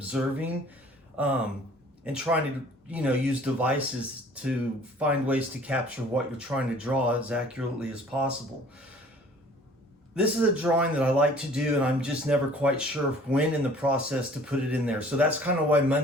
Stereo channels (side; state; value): both; normal; correlation 0.52